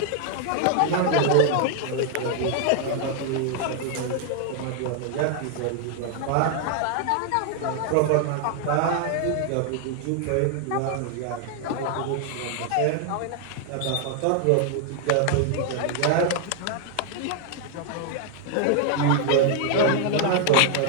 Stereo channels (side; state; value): both; different; correlation 0.00